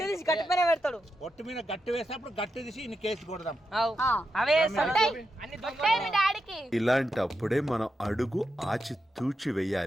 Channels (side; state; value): both; normal; correlation 0.87